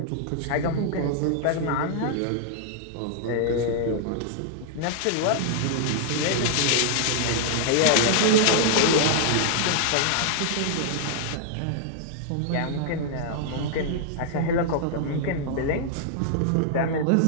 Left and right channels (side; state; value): both; different; correlation -0.01